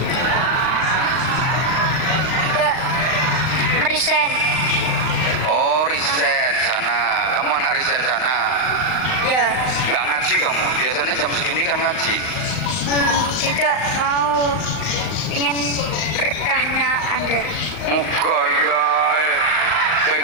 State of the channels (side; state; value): right; late; 39 ms